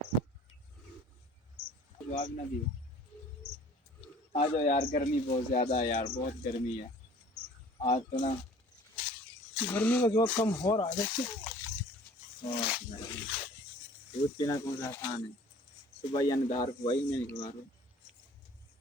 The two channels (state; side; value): normal; both; correlation 0.50